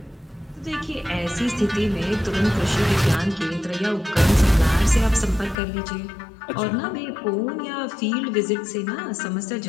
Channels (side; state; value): right; drops out; at 5.6 s